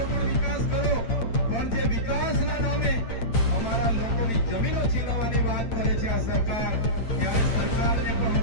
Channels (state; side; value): late; right; 8.8 ms